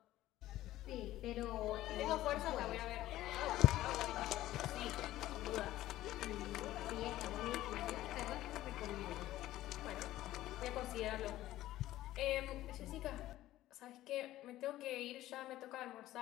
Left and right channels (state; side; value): quieter; right; 14.9 dB